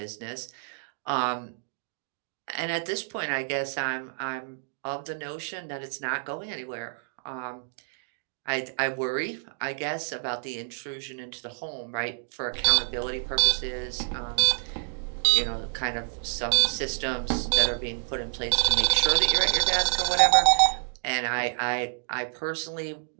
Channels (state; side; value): silent; left; digital silence